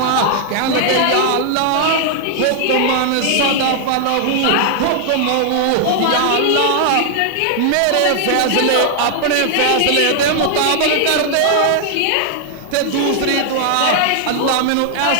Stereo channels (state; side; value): different; both; correlation 0.00